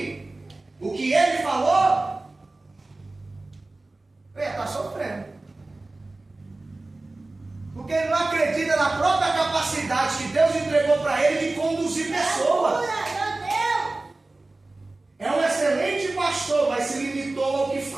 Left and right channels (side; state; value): left; quieter; 3.0 dB